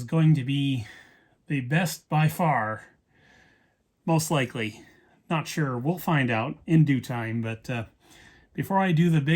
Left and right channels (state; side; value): identical; both; correlation 1.00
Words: going to be the best by far. Most likely. Not sure. We'll find out in due time. But before I do the